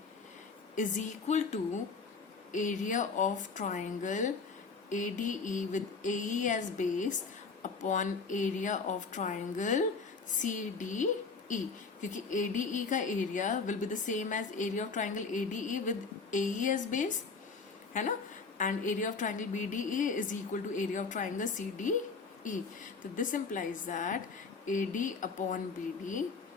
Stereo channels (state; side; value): quieter; right; 4.7 dB